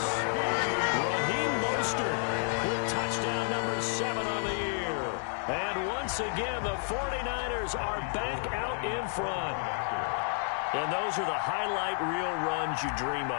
Raheem Mostert with touchdown number 7 on the year. And once again, the 49ers are back out in front. And those are the highlight reel runs you dream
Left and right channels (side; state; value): right; silent; 57 dB below the other